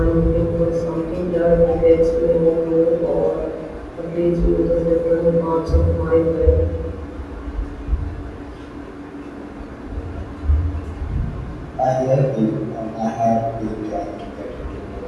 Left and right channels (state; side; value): identical; both; correlation 1.00